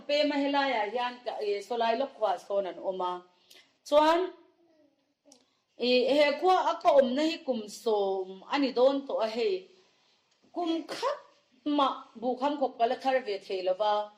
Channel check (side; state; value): both; identical; correlation 1.00